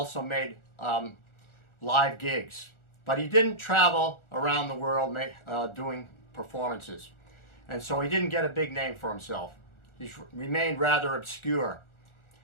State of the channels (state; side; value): late; right; 1.4 ms